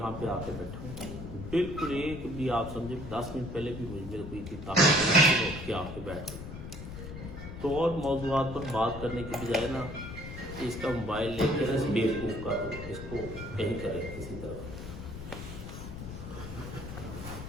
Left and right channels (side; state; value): left; noise; rumble, 9 dB below the sound